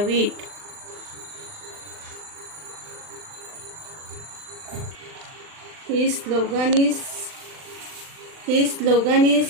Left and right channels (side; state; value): left; late; 39 ms